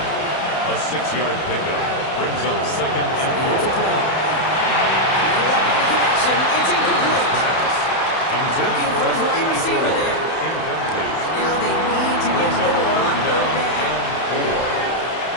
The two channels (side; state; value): right; late; 31 ms